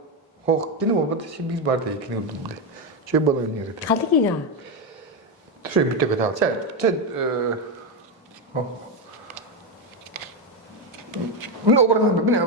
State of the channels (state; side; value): normal; both; correlation 0.09